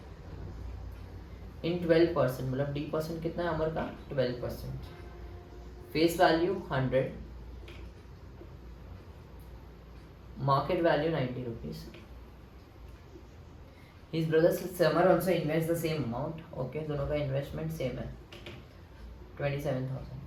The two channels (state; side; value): identical; both; correlation 1.00